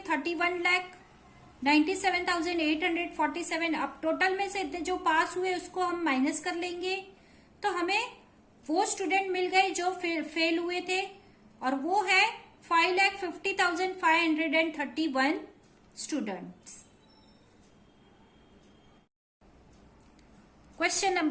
अब टोटल में से इतने जो पास हुए उसको हम माइनस कर लेंगे, तो हमें वो स्टूडेंट मिल गए जो फेल हुए थे, और वो है 5,50,531 students. Question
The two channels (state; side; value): identical; both; correlation 1.00